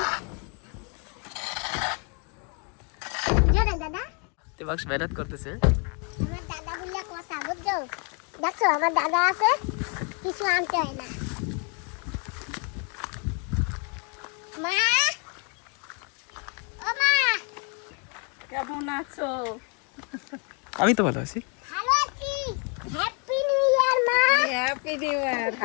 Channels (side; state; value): right; quieter; 36.7 dB